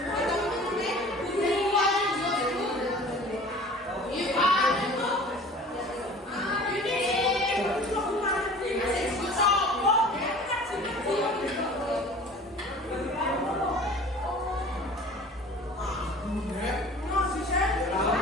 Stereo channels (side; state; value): both; normal; correlation 0.44